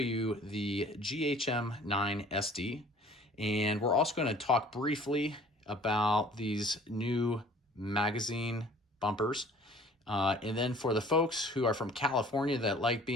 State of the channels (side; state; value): both; normal; correlation 0.51